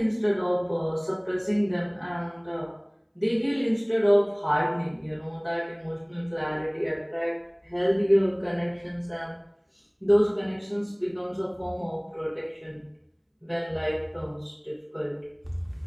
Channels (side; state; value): both; identical; correlation 1.00